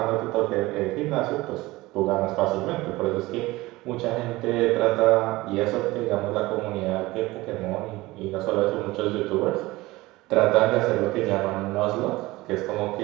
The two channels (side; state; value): left; quieter; 19.8 dB